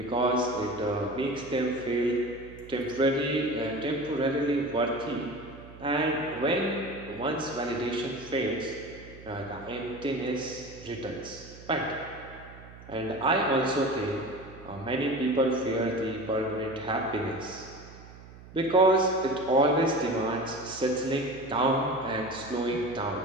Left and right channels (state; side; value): noise; right; hum, 18 dB below the sound